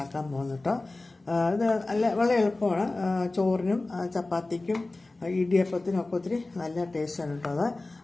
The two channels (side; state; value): right; quieter; 3.1 dB